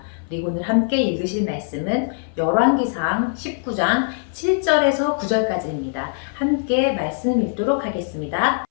그리고 오늘 함께 읽으실 말씀은 열왕기상 19장 7절에서 9절까지입니다. 함께 말씀 읽도록 하겠습니다.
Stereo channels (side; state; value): right; silent; 60 dB below the other